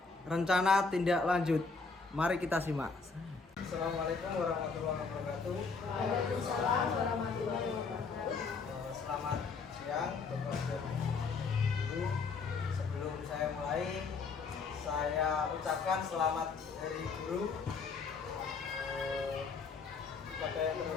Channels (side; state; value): right; quieter; 4.6 dB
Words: rencana tindak lanjut. Mari kita simak. Assalamualaikum warahmatullahi wabarakatuh. Waalaikumsalam warahmatullahi wabarakatuh. Selamat siang Bapak dan Ibu. Sebelum saya mulai, saya ucapkan selamat Hari Guru kepada yang